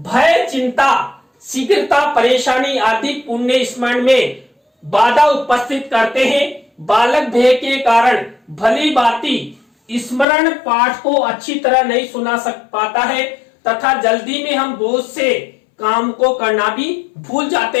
चिंता, शीघ्रता, परेशानी आदि पुण्य स्मरण में बाधा उपस्थित करते हैं। बालक भय के कारण भली भांति स्मरण पाठ को अच्छी तरह नहीं सुना पाता है तथा जल्दी में हम बोझ से काम को करना भी भूल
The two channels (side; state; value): right; drops out; at 10.2 s